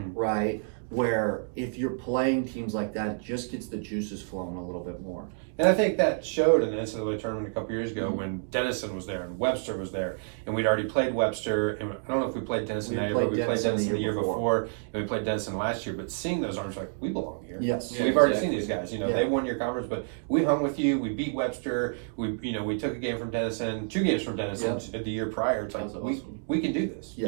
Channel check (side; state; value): left; silent; digital silence